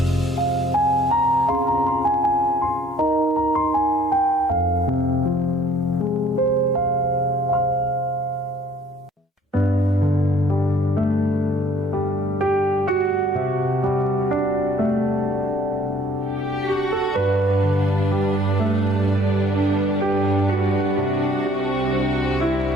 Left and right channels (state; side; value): normal; both; correlation 0.59